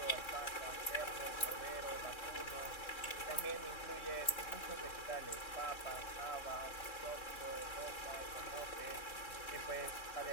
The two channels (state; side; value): late; right; 3.6 ms